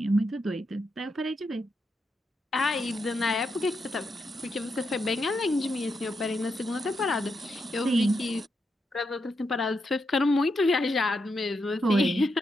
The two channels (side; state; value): both; normal; correlation 0.83